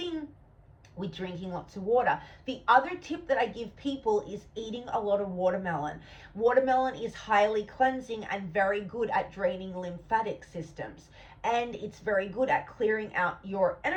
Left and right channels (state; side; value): identical; both; correlation 1.00